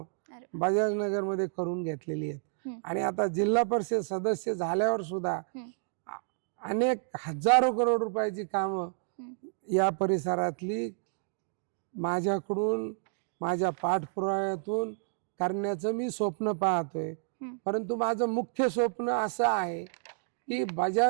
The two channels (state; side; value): silent; left; digital silence